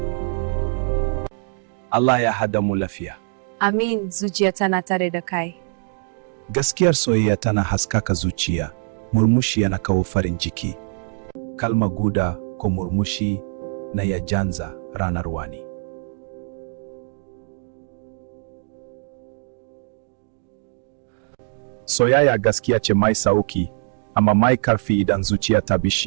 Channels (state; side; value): silent; left; 64 dB below the other